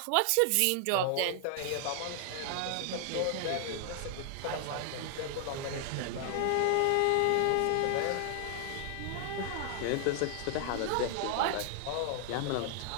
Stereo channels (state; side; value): different; both; correlation 0.00